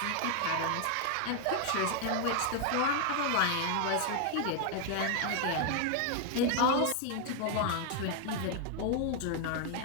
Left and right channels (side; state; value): both; different; correlation 0.00